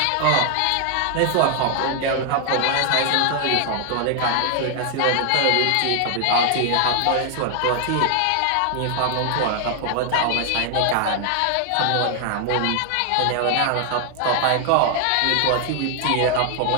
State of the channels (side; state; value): both; different; correlation 0.00